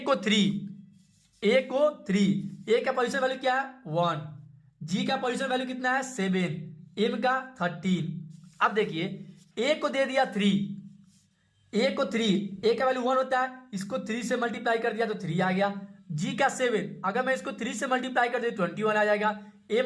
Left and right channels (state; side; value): identical; both; correlation 1.00